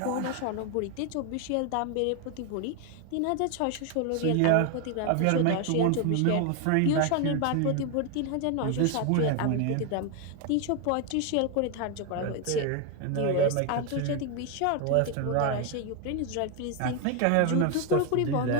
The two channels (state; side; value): different; both; correlation 0.01